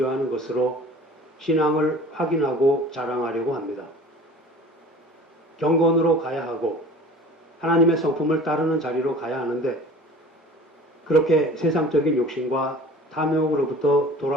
것으로 신앙을 확인하고 자랑하려고 합니다. 경건으로 가야 하고 하나님의 성품을 따르는 자리로 가야 하는데 그렇게 세상적인 욕심과 탐욕으로부터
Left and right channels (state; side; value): normal; both; correlation 0.43